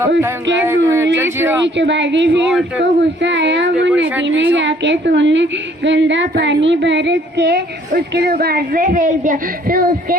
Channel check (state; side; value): normal; both; correlation 0.60